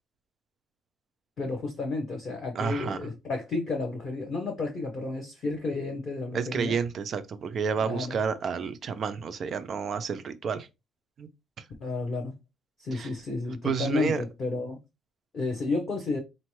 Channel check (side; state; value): both; normal; correlation 0.72